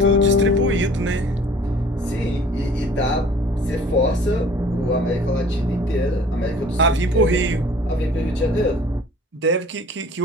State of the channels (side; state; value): both; normal; correlation 0.50